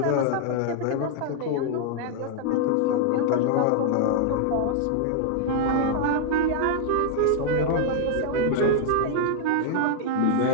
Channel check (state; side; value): different; both; correlation -0.01